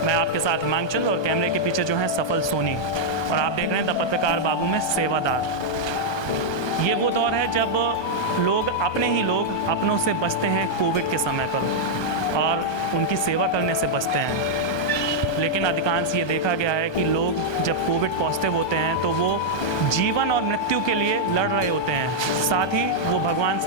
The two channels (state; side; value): late; right; 1.2 ms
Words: मैं आपके साथ हिमांचल और कैमरे के पीछे जो है सफल सोनी, और आप देख रहे हैं द पत्रकार बाबू में सेवादार। ये वो दौर है जब लोग अपनों से बचते हैं कोविड के समय पर और उनकी सेवा करने से बचते हैं। लेकिन अधिकांश ये देखा गया है कि लोग जब कोविड पॉजिटिव होते हैं तो वो जीवन और मृत्यु के लिए लड़ रहे होते हैं, साथ ही वो भगवान